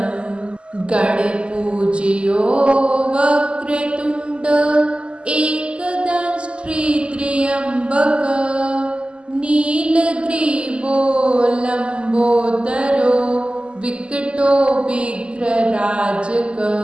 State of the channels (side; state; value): left; late; 0.053 ms